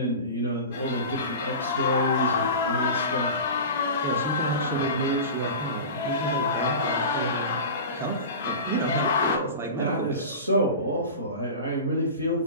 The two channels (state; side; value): inverted; both; correlation -0.31